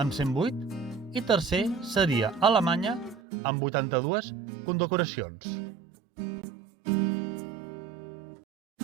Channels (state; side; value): drops out; left; at 3.2 s